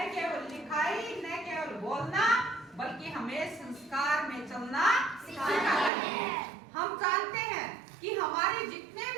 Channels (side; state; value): left; drops out; at 5.9 s